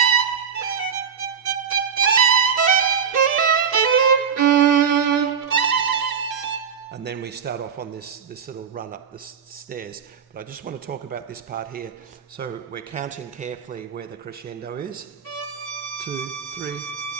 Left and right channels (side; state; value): left; quieter; 6.9 dB